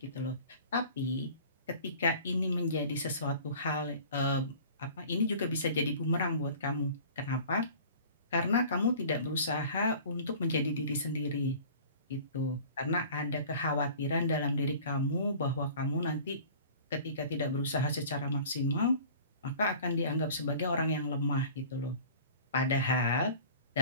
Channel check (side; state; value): both; inverted; correlation -0.44